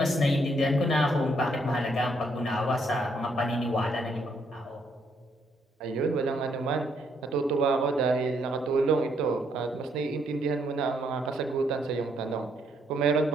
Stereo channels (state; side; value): normal; both; correlation 0.72